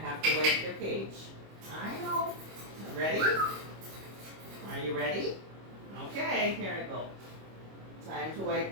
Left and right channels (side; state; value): left; late; 25 ms